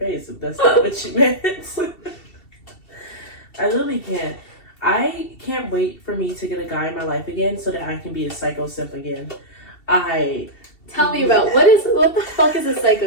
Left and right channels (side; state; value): right; late; 2.7 ms